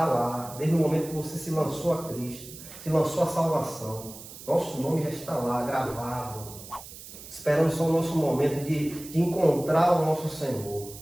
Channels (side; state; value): right; noise; hiss, 15 dB below the sound